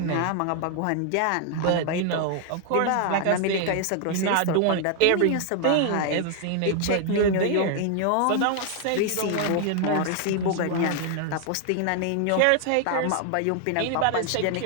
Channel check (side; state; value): both; different; correlation 0.00